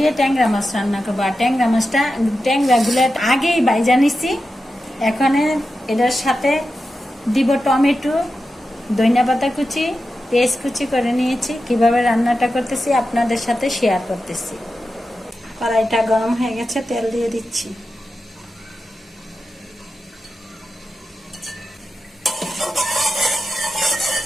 ট্যাংরা মাছ রান্না করবো। আর ট্যাংরাগুলো আগেই বাইজা নিচ্ছি। এখানে এটার সাথে দিব টমেটো, ধনিয়া পাতা কুচি, পেঁয়াজ কুচি করে নিয়েছি। কিভাবে রান্নাটা করতেছি আপনাদের সাথে শেয়ার করতেছি। কড়াইটা গরম হয়ে গেছে, তেল দিয়ে দিচ্ছি।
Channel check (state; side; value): normal; both; correlation 0.90